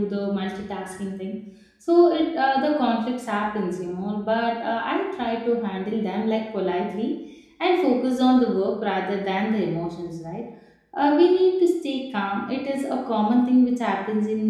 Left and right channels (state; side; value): identical; both; correlation 1.00